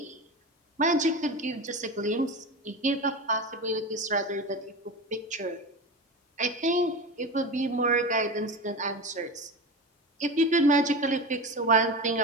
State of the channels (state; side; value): normal; both; correlation 0.25